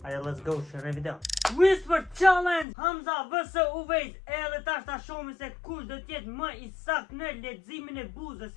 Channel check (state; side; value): drops out; right; at 2.7 s